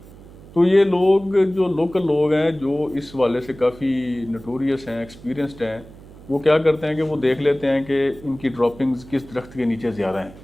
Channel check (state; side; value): noise; right; hum, 20 dB below the sound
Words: तो ये लोग जो लोकल लोग हैं जो इस वाले से काफ़ी नोटोरियस हैं, एक्सपीरियंस्ड हैं, वो क्या करते हैं कि वो देख लेते हैं कि इनकी ड्रॉपिंग्स किस दरख्त के नीचे ज़्यादा हैं।